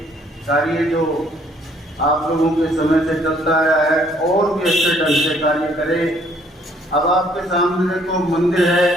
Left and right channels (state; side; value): normal; both; correlation 0.63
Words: कार्य जो आप लोगों के समय से चलता आया है और भी अच्छे ढंग से कार्य करे। अब आपके सामने देखो मंदिर है,